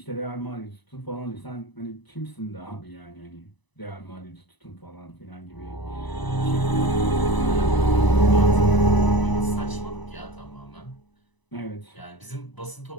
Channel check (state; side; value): late; right; 1.0 ms